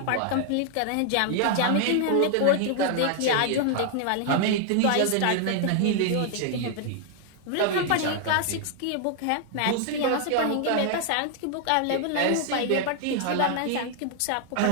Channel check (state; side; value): different; both; correlation 0.00